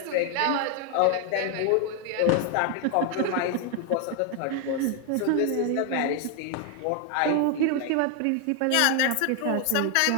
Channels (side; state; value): both; different; correlation 0.00